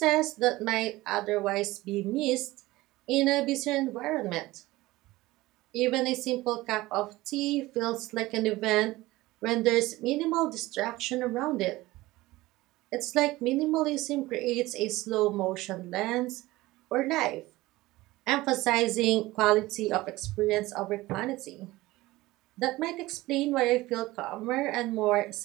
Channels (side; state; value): left; quieter; 18.9 dB